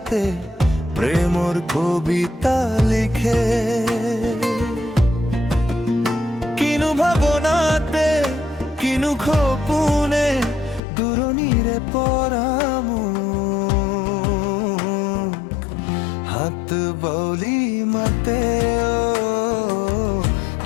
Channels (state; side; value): drops out; right; at 10.8 s